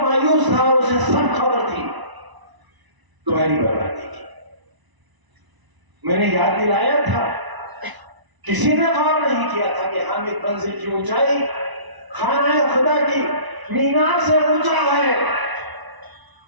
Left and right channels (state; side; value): late; left; 1.0 ms